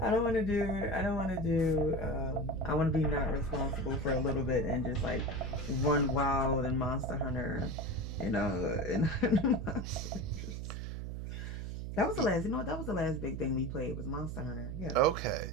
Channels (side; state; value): right; noise; hum, 6 dB below the sound